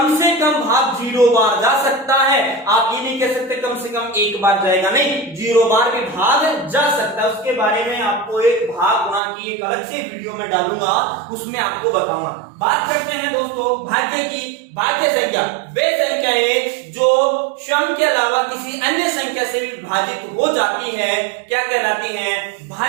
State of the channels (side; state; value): left; drops out; at 9.2 s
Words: से कम भाग 0 बार जा सकता है। आप ये नहीं कह सकते कम से कम 1 बार जाएगा, नहीं, 0 बार भी भाग जा सकता है। उसके बारे में आपको एक भाग गुणा की एक अलग से वीडियो में डालूंगा, उसमें आपको बताऊंगा। बात करते हैं दोस्तों भाज्य की। भाज्य संख्या वे संख्याएं जो सम के अलावा किसी अन्य संख्या से विभाजित हो जाती है, क्या कहलाती हैं?